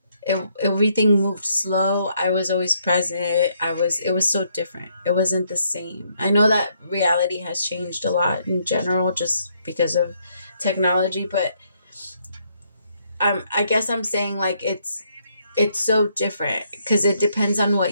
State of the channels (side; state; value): both; inverted; correlation -0.72